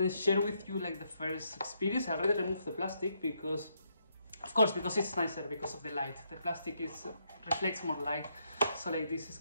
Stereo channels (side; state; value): both; inverted; correlation -0.77